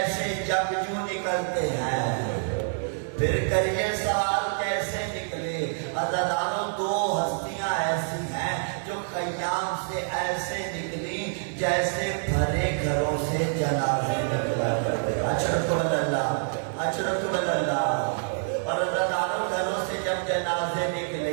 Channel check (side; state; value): left; silent; digital silence